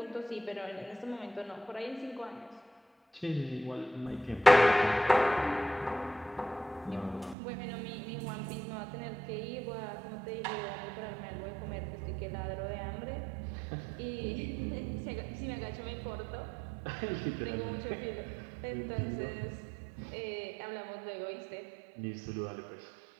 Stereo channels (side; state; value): left; drops out; at 7.4 s